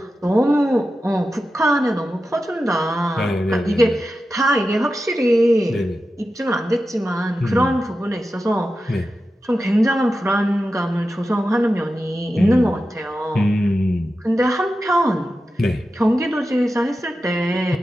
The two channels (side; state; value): both; normal; correlation 0.92